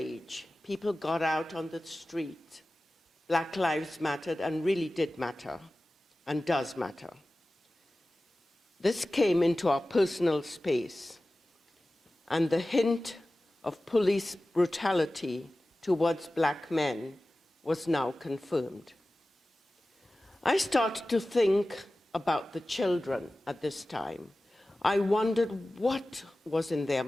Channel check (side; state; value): both; normal; correlation 0.96